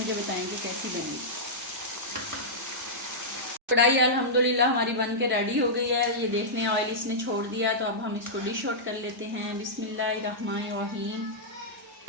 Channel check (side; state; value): both; normal; correlation -0.11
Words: बताएंगे कैसी बनी। कढ़ाई अल्हम्दुलिल्लाह हमारी बन के रेडी हो गई है। ये देख लें, ऑयल इसने छोड़ दिया। तो अब हम इसको डिश आउट कर लेते हैं। बिस्मिल्लाहिर्रहमानिर्रहीम।